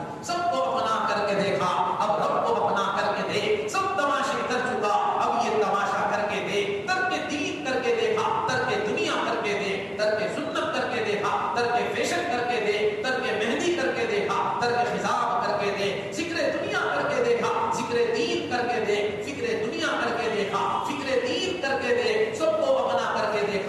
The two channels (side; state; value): both; identical; correlation 1.00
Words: سب کو اپنا کر کے دیکھا، اب رب کو اپنا کر کے دیکھ، سب تماشے کر چکا اب یہ تماشا کر کے دیکھ۔ ترک دین کر کے دیکھا، ترک دنیا کر کے دیکھ، ترک سنت کر کے دیکھا، ترک فیشن کر کے دیکھ، ترک مہندی کر کے دیکھا، ترک خضاب کر کے دیکھ، ذکر دنیا کر کے دیکھا، ذکر دین کر کے دیکھ، فکر دنیا کر کے دیکھا، فکر دین کر کے دیکھ، سب کو اپنا کر کے